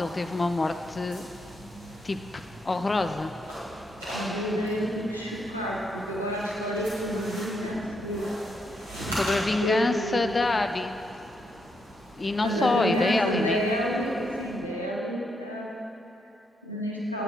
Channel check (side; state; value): both; normal; correlation 0.78